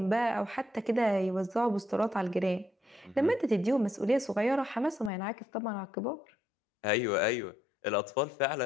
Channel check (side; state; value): right; drops out; at 5.1 s